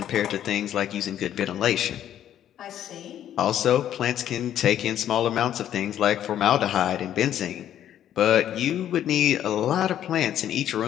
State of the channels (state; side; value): quieter; right; 10.9 dB